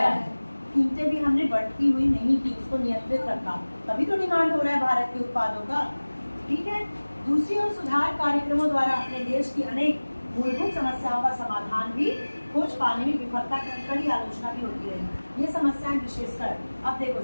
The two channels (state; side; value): inverted; both; correlation -1.00